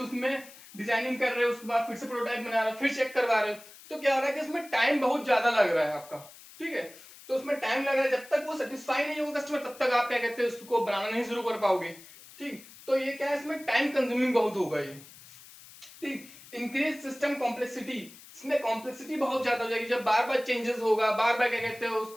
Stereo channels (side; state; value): left; noise; hiss, 20 dB below the sound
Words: उसमें डिजाइनिंग कर रहे हो, उसके बाद फिर से प्रोटोटाइप बना रहे हो, फिर चेक करवा रहे हो, तो क्या हो रहा है कि इसमें टाइम बहुत ज्यादा लग रहा है आपका, ठीक है। तो उसमें टाइम लग रहा है, जब तक वो सेटिस्फाई नहीं होगा कस्टमर, तब तक आप क्या कहते हैं उसको बनाना नहीं शुरू कर पाओगे, ठीक। तो ये क्या है, इसमें टाइम कंज्यूमिंग बहुत होगा ये, ठीक। इंक्रीज सिस्टम कॉम्प्लेक्सिटी, इसमें कॉम्प्लेक्सिटी बहुत ज्यादा हो जाएगी, जब बार बार चेंजेस होगा, बार बार क्या कहते हैं